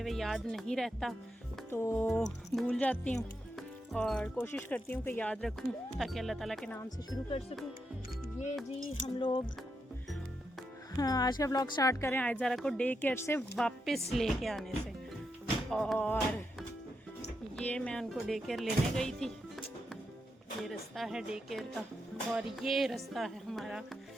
हुए याद नहीं रहता तो भूल जाती हूँ और कोशिश करती हूँ कि याद रखूँ ताकि अल्लाह ताला के नाम से शुरू कर सकूँ। ये जी हम लोग आज का व्लॉग स्टार्ट करें आयज़ारा को डे केयर से वापस लेके आने से। और ये मैं उनको डे केयर लेने गई थी, ये रास्ता है डे केयर का और ये रास्ता है हमारा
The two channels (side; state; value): both; normal; correlation 0.84